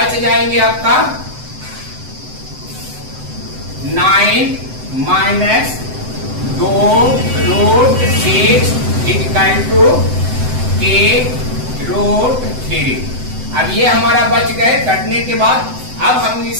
जाएंगे आपका 9 minus 2 root 6 equal to k root 3। अब ये हमारा बच गए कटने के बाद। अब हम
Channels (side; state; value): left; late; 7.9 ms